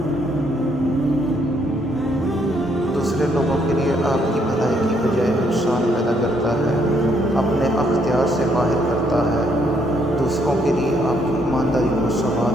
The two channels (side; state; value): both; normal; correlation 0.71